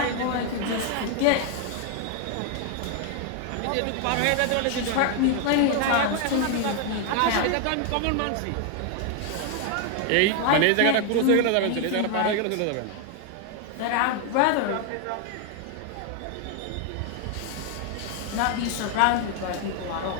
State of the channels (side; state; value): both; different; correlation 0.01